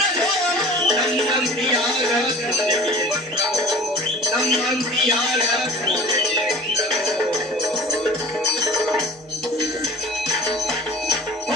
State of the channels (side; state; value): both; normal; correlation 0.42